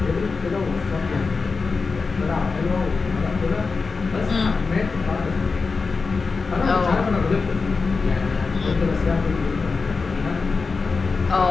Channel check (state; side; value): quieter; right; 4.5 dB